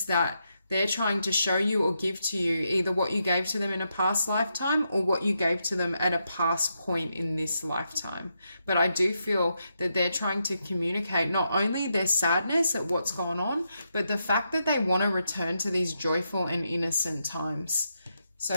that they're trying to show you or give to you either what you gave to them in a past lifetime or what you gave to them at a past point in this lifetime. But I do feel that they're trying to communicate not only their sadness at what's gone on, but the fact that they want to return to these joyful and innocent times. So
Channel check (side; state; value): both; inverted; correlation -0.83